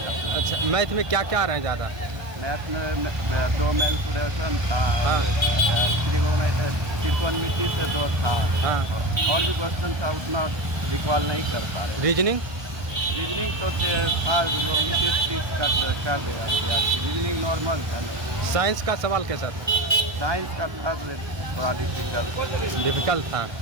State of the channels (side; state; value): left; late; 1.2 ms